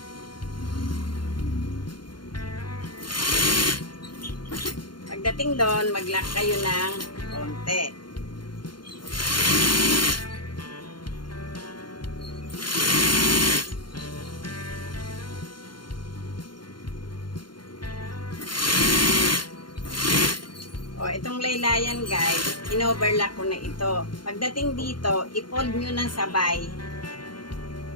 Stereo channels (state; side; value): late; right; 0.72 ms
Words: Pagdating doon, mag-lock kayo ng konti. O, itong laylayan guys, in-overlock ko na ito. Pagdating dito, i-fold nyo ng sabay